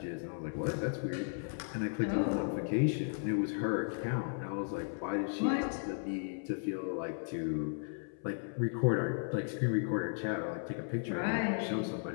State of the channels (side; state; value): right; silent; 54 dB below the other